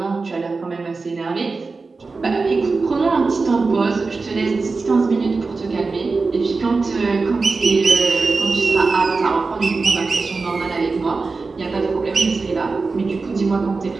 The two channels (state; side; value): quieter; left; 4.1 dB